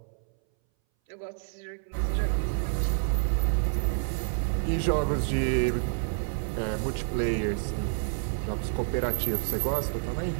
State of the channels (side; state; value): left; silent; 59 dB below the other